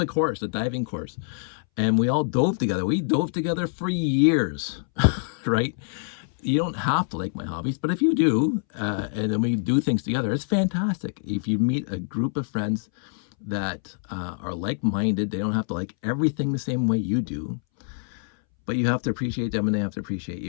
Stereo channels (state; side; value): silent; right; 61 dB below the other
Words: course, the diving course. and we all dove together. We dove together for years, right? You don't have to like my hobbies, but if you do, and then we do things together, it's fantastic. If you meet a group of friends that are like-minded, they don't have to like everything the same way you do, but you have to appreciate them and they have to appreciate